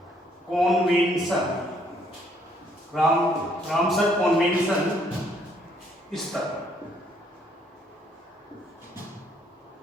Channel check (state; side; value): normal; both; correlation 0.67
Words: कॉन्वेंशन। रामसर कॉन्वेंशन स्थल,